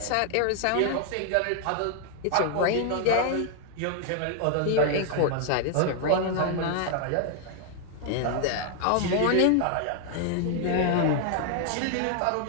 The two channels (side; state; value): both; different; correlation 0.00